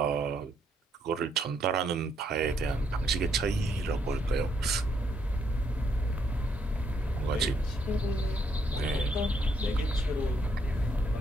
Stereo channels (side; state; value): both; normal; correlation 0.73